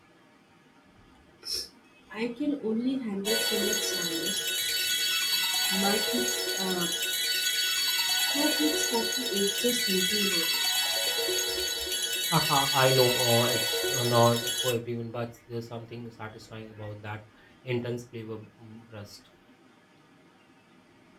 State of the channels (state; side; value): identical; both; correlation 1.00